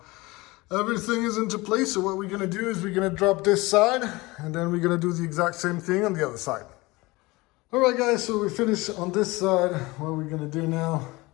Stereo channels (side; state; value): right; quieter; 22.3 dB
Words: Everything is into place, so what we're gonna do is we're gonna drop this side, and then we're gonna do the exact same thing on the other side. All right, guys, so we finished on this side. What we're gonna do now,